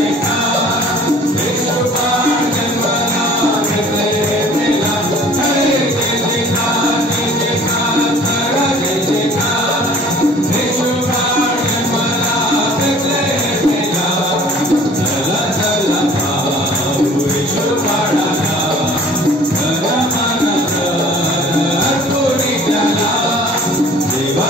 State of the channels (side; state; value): both; normal; correlation 0.50